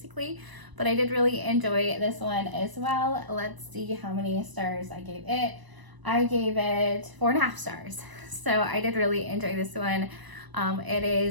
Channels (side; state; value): left; late; 1.0 ms